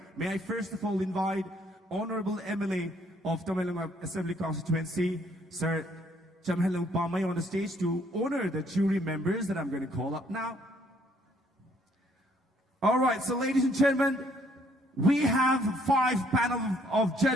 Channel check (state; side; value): normal; both; correlation 0.66